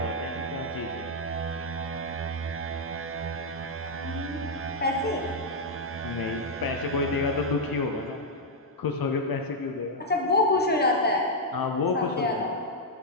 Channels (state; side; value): normal; both; correlation -0.03